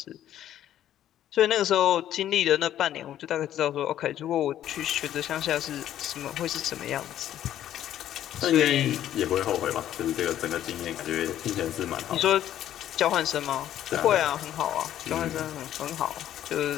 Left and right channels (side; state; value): right; quieter; 11.6 dB